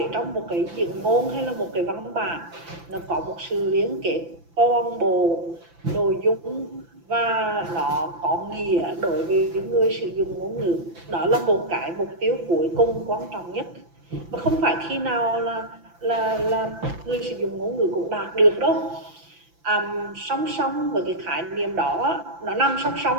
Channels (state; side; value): late; left; 5.9 ms